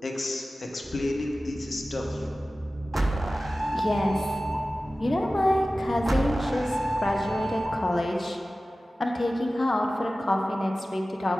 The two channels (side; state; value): both; normal; correlation 0.96